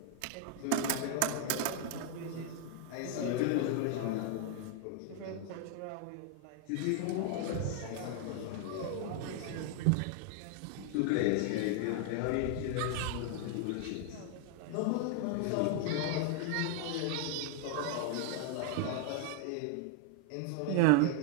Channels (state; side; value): different; both; correlation 0.00